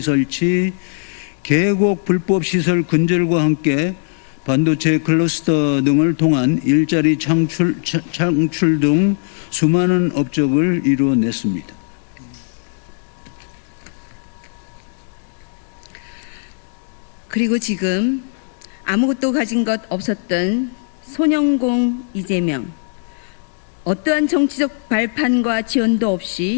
설치, 계곡 불법 시설 근절과 함께 반도체 클러스터 등을 통한 일자리 창출 등 수많은 업적을 이루어냈습니다. 그리고 지금 아무것도 가진 것 없었던 소년공 이재명, 어떠한 정치적 발판과 지원도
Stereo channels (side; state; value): right; silent; digital silence